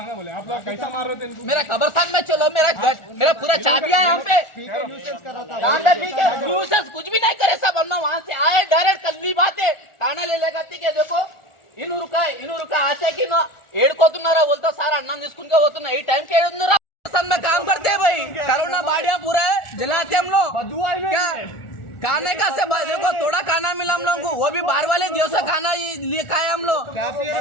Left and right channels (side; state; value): right; late; 1.4 ms